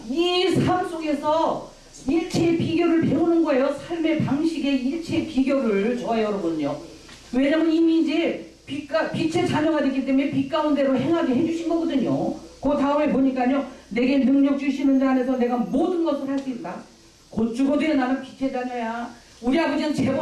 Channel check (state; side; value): identical; both; correlation 1.00